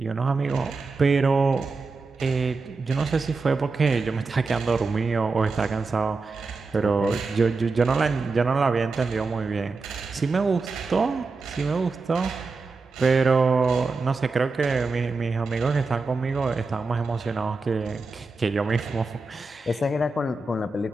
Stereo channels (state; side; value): quieter; left; 3.9 dB